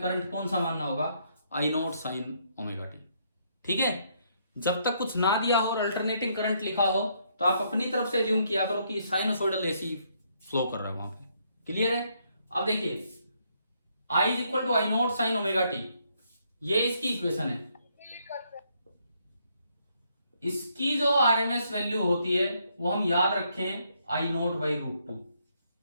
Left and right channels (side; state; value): both; inverted; correlation -0.72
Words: करंट कौन सा मानना होगा? आई नॉट साइन ओमेगा टी। ठीक है, जब तक कुछ ना दिया हो और अल्टरनेटिंग करंट लिखा हो तो आप अपनी तरफ से एज्यूम किया करो कि साइनोसॉइडल एसी फ्लो कर रहा है वहां पे। क्लियर है? अब देखिए I is equal to I naught sine omega t, ये इसकी इक्वेशन है। इसकी जो आरएमएस वैल्यू होती है वो हम याद रखें आई नॉट बाई रूट टू।